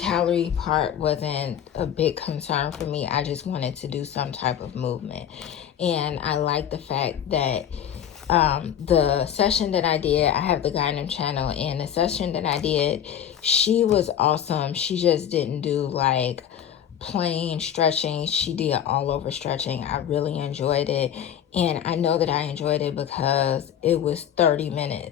part wasn't a big concern for me. I just wanted to do some type of movement. And I like the fact that the session that I did, I have the Gynem channel, and the session that I did, she was awesome. She just didn't do like plain stretching. She did all over stretching. I really enjoyed it. And I know that I enjoyed it because it was 30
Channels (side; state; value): right; quieter; 9.6 dB